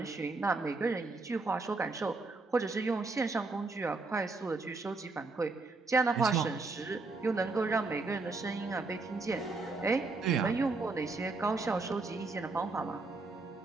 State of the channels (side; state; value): left; quieter; 3.6 dB